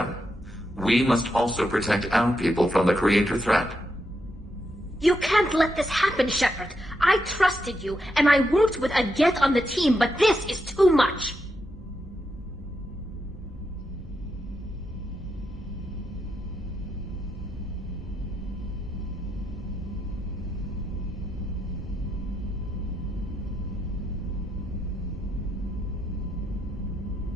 We must also protect our people from the Creator threat. You can't let this happen, Shepard. I trusted you, and I worked with a Geth on the team, but this is too much.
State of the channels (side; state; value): both; normal; correlation 0.83